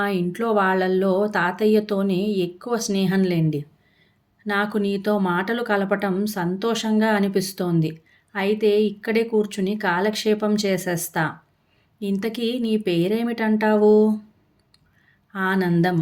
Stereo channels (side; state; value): both; identical; correlation 1.00